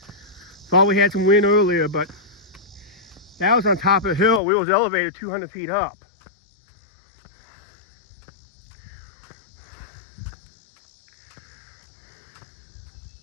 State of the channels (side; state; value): right; drops out; at 4.4 s